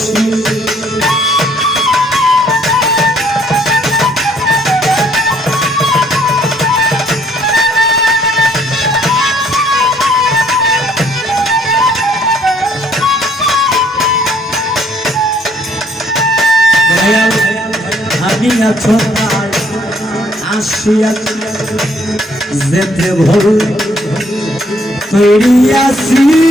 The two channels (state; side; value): normal; both; correlation 0.65